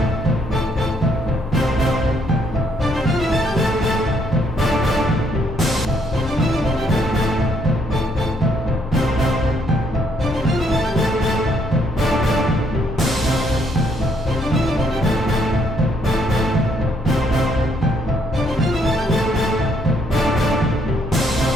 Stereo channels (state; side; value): normal; both; correlation 0.70